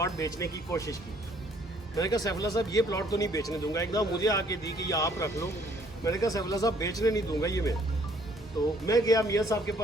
बेचने की कोशिश की। मैंने कहा सैफुल्ला साहब ये प्लॉट तो नहीं बेचने दूंगा। एकदम मुझे आके दी कि ये आप रख लो। मैंने कहा सैफुल्ला साहब बेचने नहीं दूंगा ये मैं। تو میں گیا میاں صاحب کے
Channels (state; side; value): normal; both; correlation 0.62